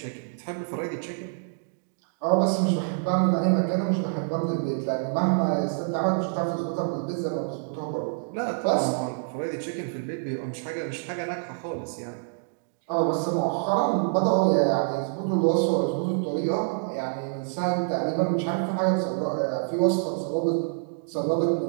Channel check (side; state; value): left; silent; digital silence